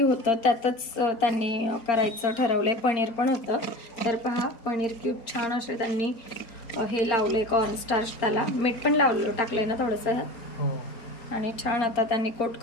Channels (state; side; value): late; right; 4.3 ms